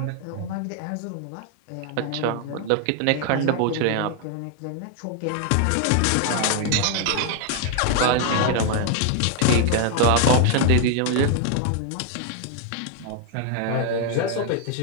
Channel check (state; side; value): different; both; correlation 0.00